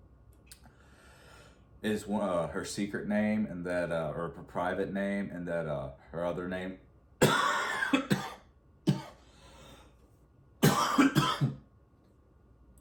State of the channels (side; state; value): both; identical; correlation 1.00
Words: is her secret name, and that, or her private name, and that her other name